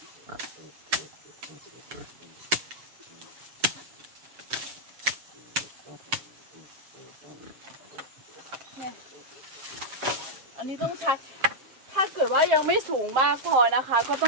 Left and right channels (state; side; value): late; left; 7.6 ms